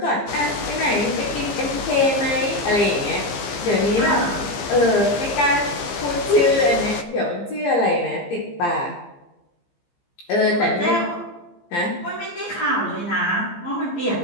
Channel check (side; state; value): right; late; 15 ms